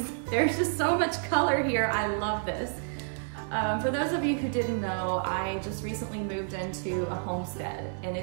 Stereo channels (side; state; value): left; silent; 57 dB below the other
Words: There's just so much color here. I love this. For those of you who didn't know, I just recently moved into a homestead and